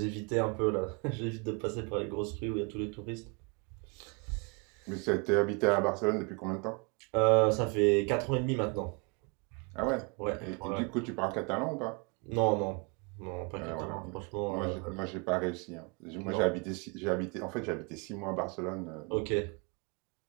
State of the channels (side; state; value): left; quieter; 32.5 dB